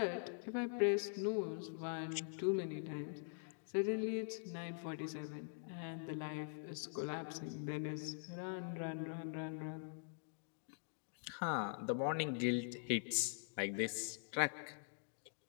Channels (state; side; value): silent; right; digital silence